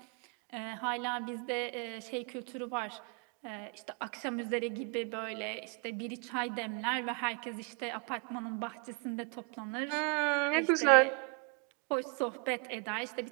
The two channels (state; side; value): quieter; left; 33.1 dB